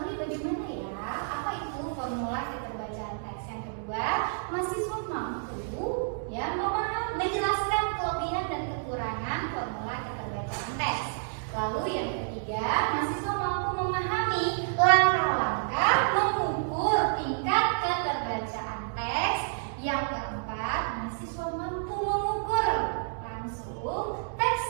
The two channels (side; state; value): left; silent; digital silence